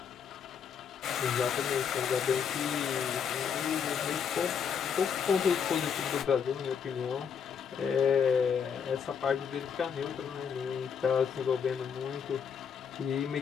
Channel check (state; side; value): quieter; right; 7.1 dB